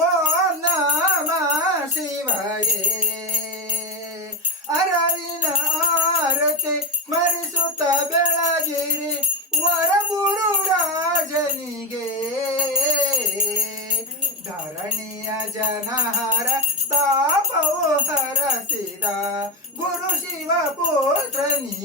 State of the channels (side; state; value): both; normal; correlation 0.13